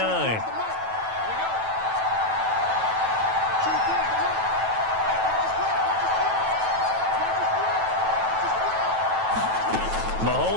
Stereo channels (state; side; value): late; left; 9.1 ms